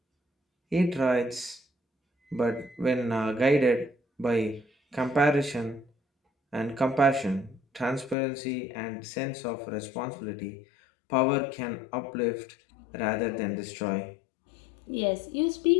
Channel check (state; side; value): drops out; right; at 8.2 s